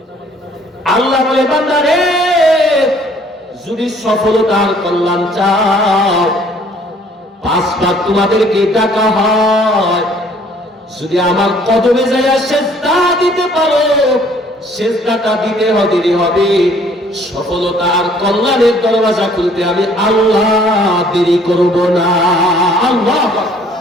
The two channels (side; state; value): both; normal; correlation 0.59